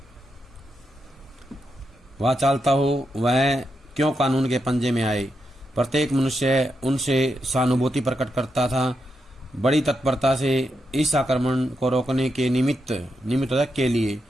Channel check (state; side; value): normal; both; correlation 0.84